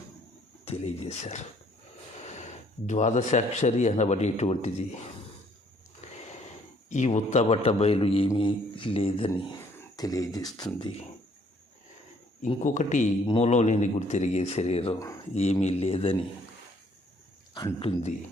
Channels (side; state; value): both; normal; correlation 0.63